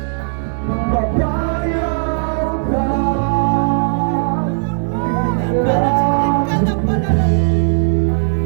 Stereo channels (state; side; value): silent; left; 58 dB below the other